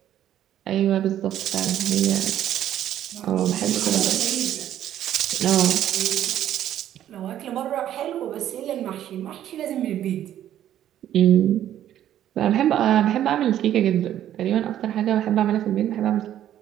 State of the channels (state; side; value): quieter; left; 11.5 dB